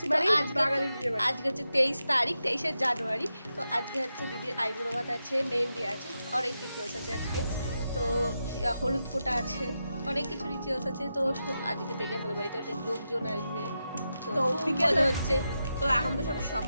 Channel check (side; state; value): both; inverted; correlation -0.88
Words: মানে বাঙালির বিয়ে বাড়ি। আজকে হচ্ছে 23 তারিখ, 23শে জানুয়ারি। তো আজকে হচ্ছে দিদির আইবুড়ো ভাত আছে, মেহেন্দি আছে, অনেক রিচুয়ালস আছে আজকে। তো হলুদ ফোঁটা আছে, অনেক কিছু রিচুয়ালস আছে। তো আজকে থেকে আমাদের বাড়িতে অনেক লোকজন আসবে। তো বিকেল হচ্ছে, তো এখন তো সব